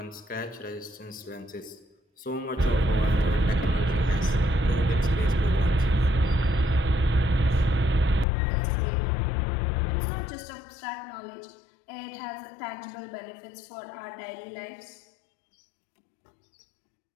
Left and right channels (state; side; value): drops out; right; at 8.2 s